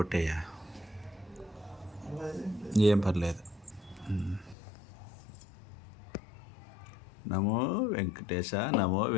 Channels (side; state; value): right; drops out; at 4.5 s